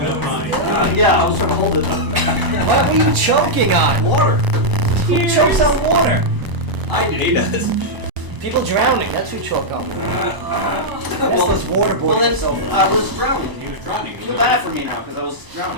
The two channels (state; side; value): late; left; 1.0 ms